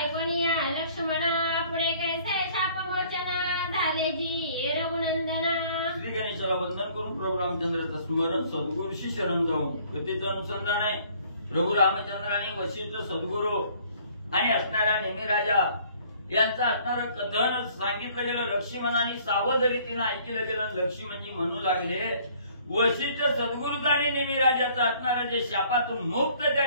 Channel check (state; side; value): inverted; both; correlation -0.57